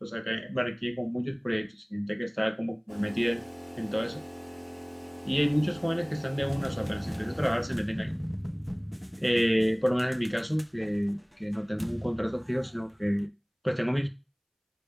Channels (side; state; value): both; identical; correlation 1.00